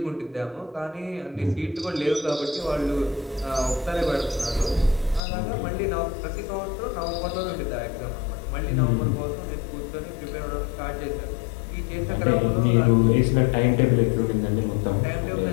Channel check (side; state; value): right; drops out; at 5.2 s